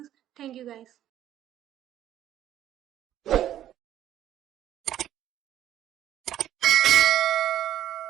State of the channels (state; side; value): quieter; left; 12.0 dB